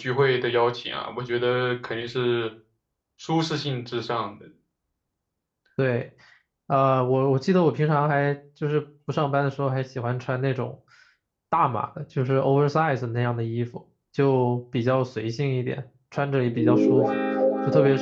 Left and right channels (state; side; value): identical; both; correlation 1.00